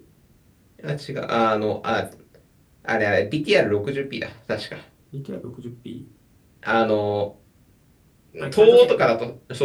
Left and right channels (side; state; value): both; identical; correlation 1.00